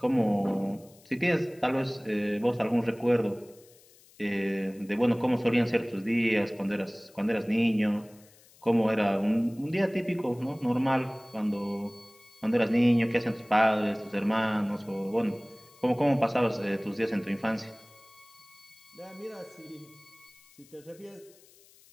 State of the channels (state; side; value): noise; left; hiss, 27 dB below the sound